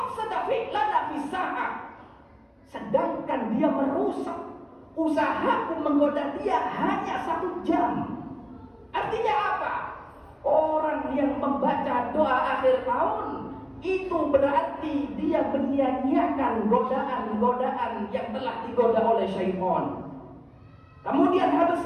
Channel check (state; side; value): identical; both; correlation 1.00